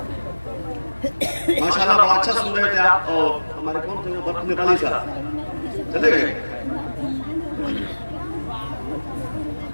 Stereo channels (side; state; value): both; inverted; correlation -1.00